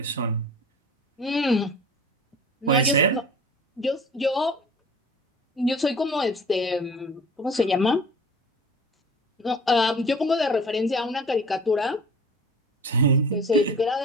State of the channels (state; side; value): normal; both; correlation 0.42